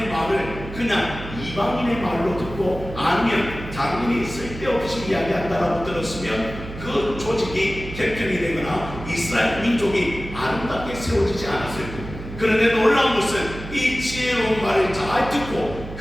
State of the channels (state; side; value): noise; right; hum, 11 dB below the sound